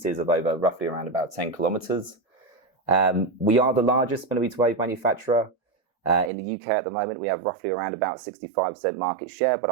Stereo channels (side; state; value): left; drops out; at 6.3 s